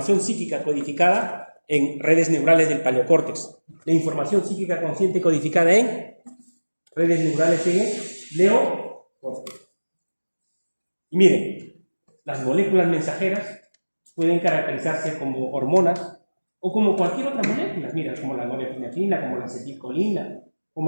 psíquica codificada en redes neurales del paleocórtex, la información psíquica consciente codificada en redes neurales en neocórtex. Y miren, las moléculas mensajeras pueden caracterizarse como hormonas, O como cualquier otra molécula, mira, como la norepinefrina, como la acetilcolina,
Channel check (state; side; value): inverted; both; correlation -1.00